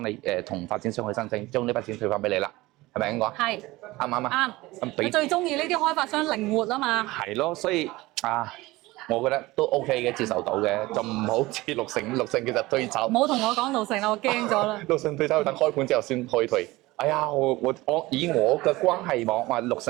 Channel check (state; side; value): quieter; left; 19.8 dB